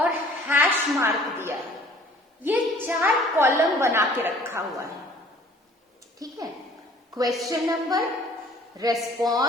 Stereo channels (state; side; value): normal; both; correlation 0.53